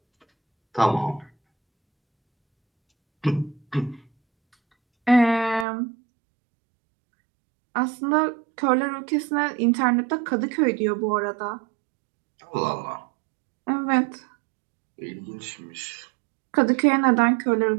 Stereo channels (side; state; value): left; drops out; at 5.7 s